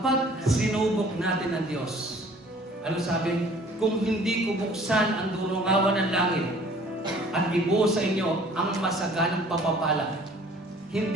sinubok natin ang Diyos, ano sabi? Kung hindi ko buksan ang durungawan ng langit at ibuhos sa inyo ang masaganang papapala,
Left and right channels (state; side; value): normal; both; correlation 0.52